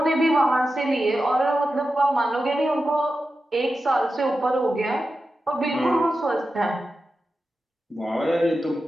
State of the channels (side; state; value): both; normal; correlation 0.91